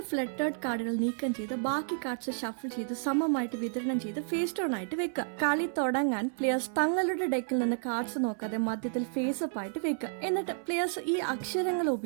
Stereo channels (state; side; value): silent; left; 57 dB below the other